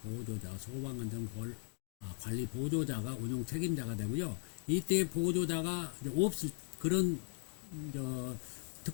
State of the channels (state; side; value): silent; right; 52 dB below the other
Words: 보조자, 소방안전관리 보조자가 운영 책임자가 되고요. 이때 보조자가 이제 없을 그런